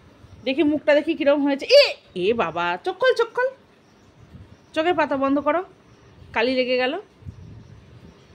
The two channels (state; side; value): identical; both; correlation 1.00